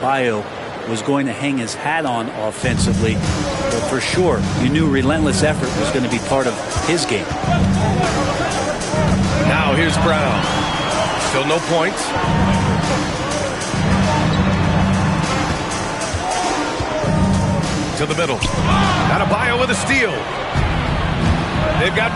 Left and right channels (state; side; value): identical; both; correlation 1.00